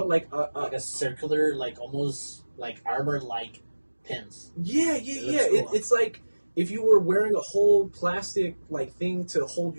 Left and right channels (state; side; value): inverted; both; correlation -1.00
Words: like a circular, like almost like armor like pins. Yeah. Cool. It's like if you were wearing a whole plastic like thing to hold